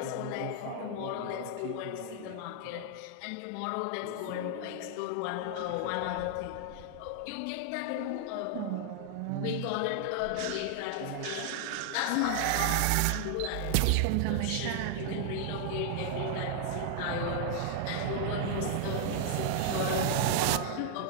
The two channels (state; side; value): different; both; correlation 0.00